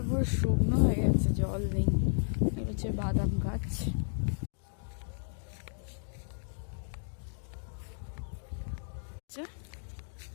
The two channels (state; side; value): silent; right; digital silence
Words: পুরো শুকনো হয়ে গেছে, জল নেই। এটা হচ্ছে বাদাম গাছ।